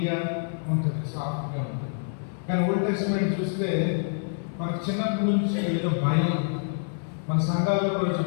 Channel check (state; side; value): silent; right; 60 dB below the other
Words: ఉంటుంది, సాఫ్ట్గా ఉంటుంది. కానీ ఓల్డ్ టెస్ట్మెంట్ చూస్తే మనకు చిన్నప్పటి నుంచి ఏదో భయం. మన సంఘాల్లో కూడా